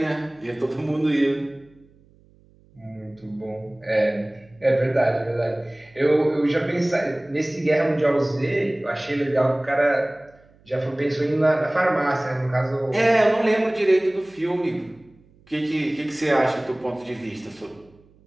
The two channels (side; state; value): right; noise; hum, 30 dB below the sound